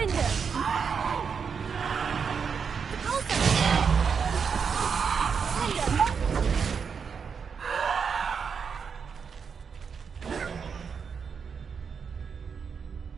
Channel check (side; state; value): left; quieter; 6.2 dB